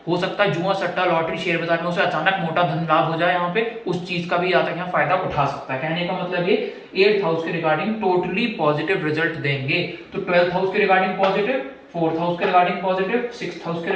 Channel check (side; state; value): both; identical; correlation 1.00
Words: हो सकता है जुआ सट्टा लॉटरी शेयर बाजार में उसे अचानक मोटा धन लाभ हो जाए, यहाँ पे उस चीज का भी यहाँ तक यहाँ फायदा उठा सकता है। कहने का मतलब ये 8th हाउस के रिगार्डिंग टोटली पॉजिटिव रिजल्ट देंगे। तो 12th हाउस के रिगार्डिंग पॉजिटिव, 4th हाउस के रिगार्डिंग पॉजिटिव, 6th हाउस के